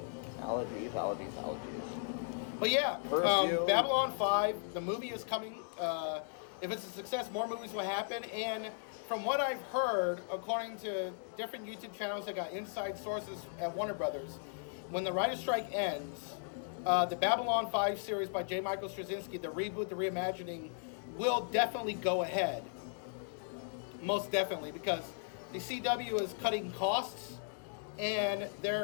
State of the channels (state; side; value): silent; right; digital silence